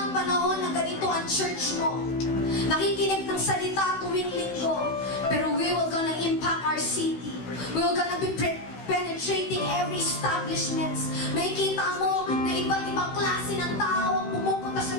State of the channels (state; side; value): late; right; 16 ms